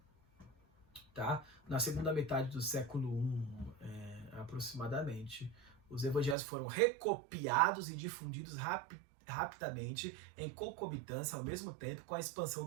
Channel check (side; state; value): left; drops out; at 6.4 s